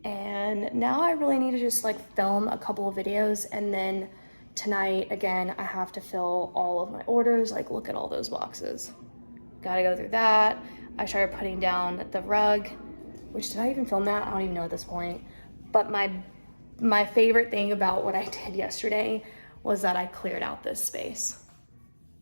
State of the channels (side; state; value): both; inverted; correlation -1.00